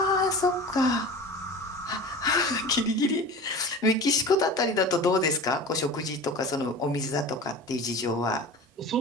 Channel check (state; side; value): normal; both; correlation 0.36